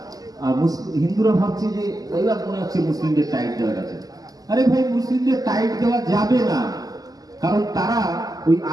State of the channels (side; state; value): left; late; 0.17 ms